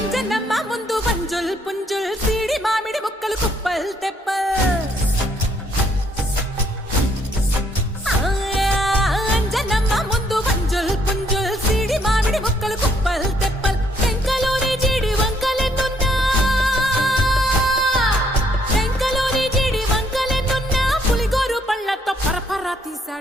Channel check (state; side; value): normal; both; correlation 0.68